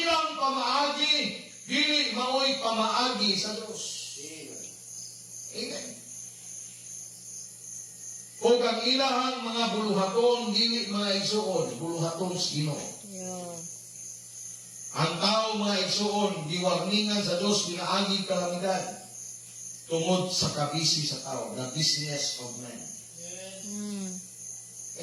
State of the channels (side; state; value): both; identical; correlation 1.00